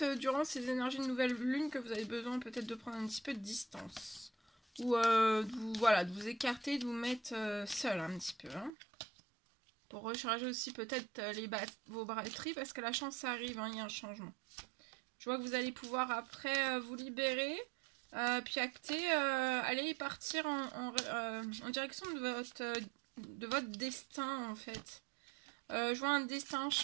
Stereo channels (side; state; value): left; drops out; at 8.7 s